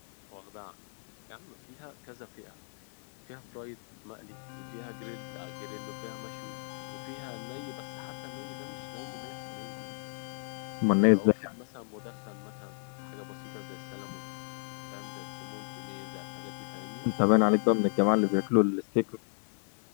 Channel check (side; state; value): right; silent; digital silence